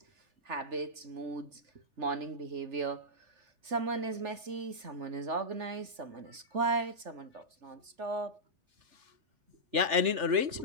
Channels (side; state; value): left; late; 3.4 ms